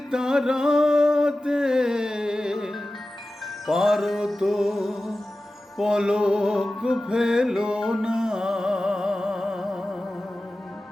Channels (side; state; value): both; normal; correlation 0.95